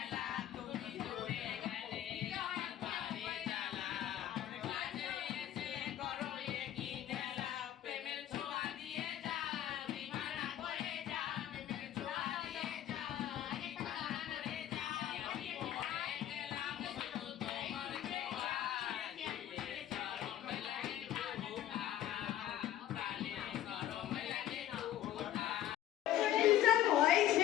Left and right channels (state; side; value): quieter; right; 12.2 dB